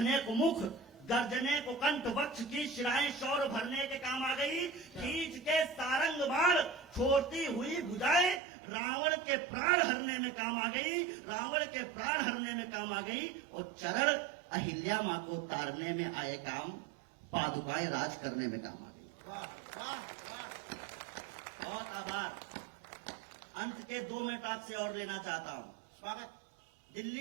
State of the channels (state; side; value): drops out; left; at 8.4 s